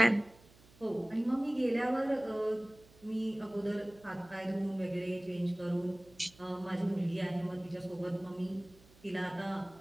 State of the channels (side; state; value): right; noise; hum, 26 dB below the sound